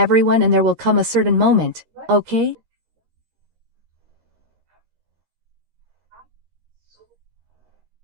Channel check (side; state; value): left; late; 13 ms